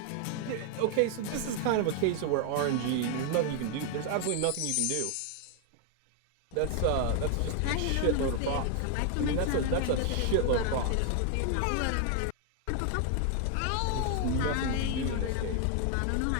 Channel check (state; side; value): different; both; correlation 0.00